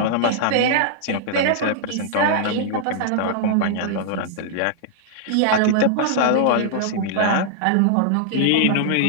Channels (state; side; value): different; both; correlation -0.01